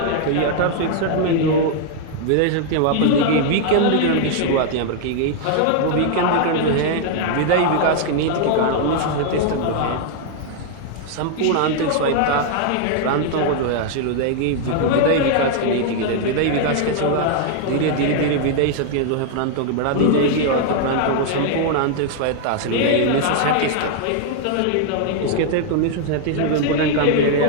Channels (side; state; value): both; different; correlation 0.00